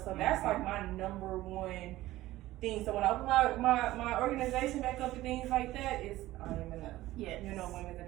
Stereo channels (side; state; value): left; quieter; 16.3 dB